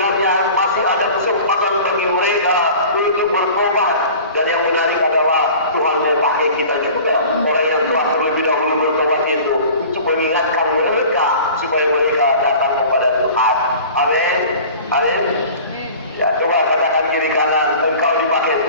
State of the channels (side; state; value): both; inverted; correlation -0.42